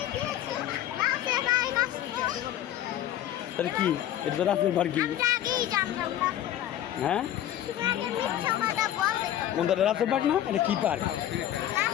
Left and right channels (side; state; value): right; quieter; 12.0 dB